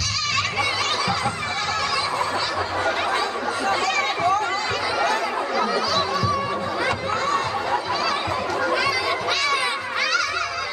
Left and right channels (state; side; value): identical; both; correlation 1.00